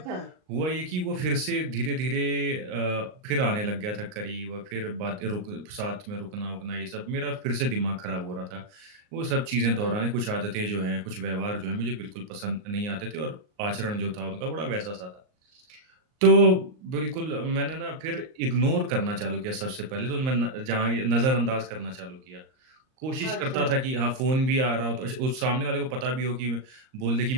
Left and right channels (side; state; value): left; late; 38 ms